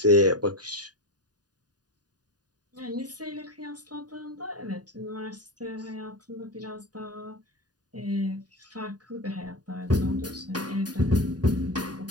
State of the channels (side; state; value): left; late; 0.69 ms